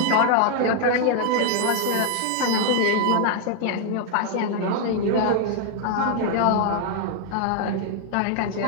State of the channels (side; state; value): both; different; correlation 0.00